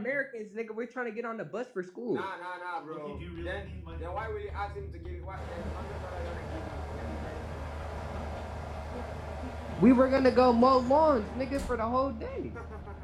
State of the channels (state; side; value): identical; both; correlation 1.00